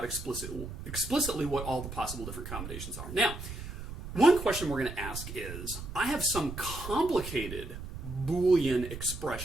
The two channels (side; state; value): right; noise; rumble, 9 dB below the sound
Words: explicitly what all the possible different combinations are. Now, one question we're going to ask is, I have some complicated Boolean